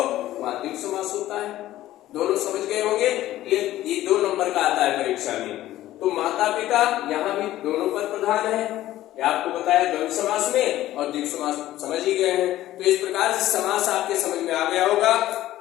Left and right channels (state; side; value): quieter; right; 14.5 dB